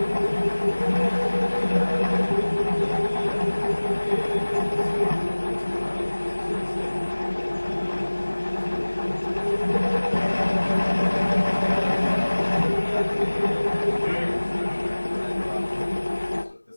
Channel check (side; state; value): both; inverted; correlation -1.00